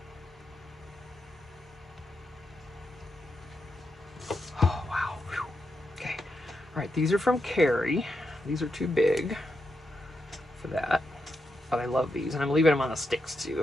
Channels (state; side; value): normal; both; correlation 0.84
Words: Oh, wow. Whew. Okay. All right, these are from Carrie. These are too big for that. But I love these, and I'm leaving them on the sticks,